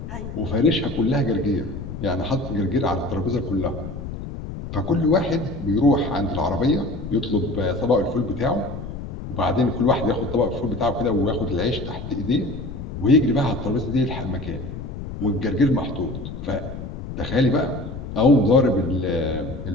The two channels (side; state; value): left; noise; rumble, 9 dB below the sound